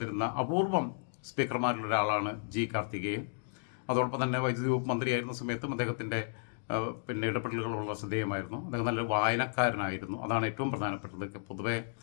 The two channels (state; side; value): silent; right; digital silence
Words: അപൂർവം സ്പീക്കർമാരിലൊരാളാണ് G. കാർത്തികേയൻ. അതോടൊപ്പം തന്നെ വൈദ്യുതി വകുപ്പ് മന്ത്രിയായിരുന്ന സമയത്തും അദ്ദേഹത്തിൻ്റെ പിന്നെ ഇടപെടലുകളുള്ള ശ്രദ്ധേയമായിരുന്നു. അദ്ദേഹം നല്ല വായനക്കാരനായിരുന്നു. അതാണ് ഏറ്റവും പ്രധാനപ്പെട്ടത്. പൊതുവെ